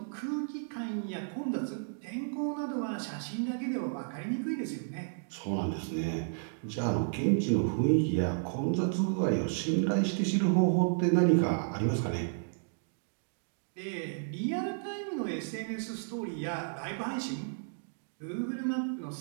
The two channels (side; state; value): left; silent; digital silence